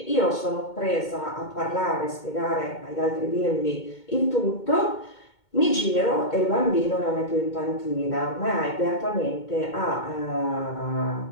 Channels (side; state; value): right; late; 2.2 ms